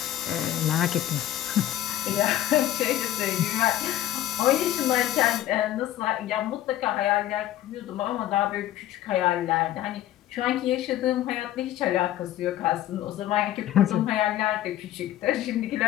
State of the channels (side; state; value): right; quieter; 13.1 dB